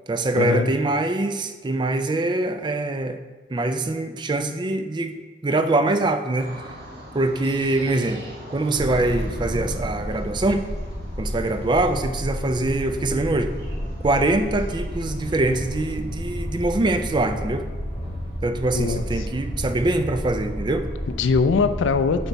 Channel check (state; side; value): normal; both; correlation 0.57